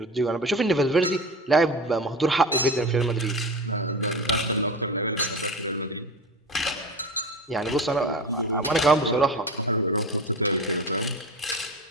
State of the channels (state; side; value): normal; both; correlation 0.30